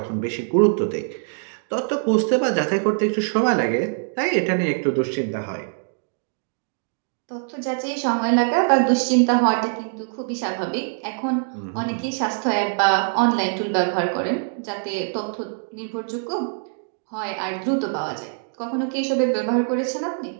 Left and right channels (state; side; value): silent; left; 63 dB below the other